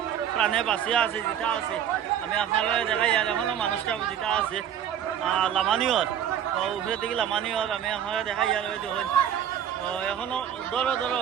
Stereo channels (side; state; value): left; quieter; 9.5 dB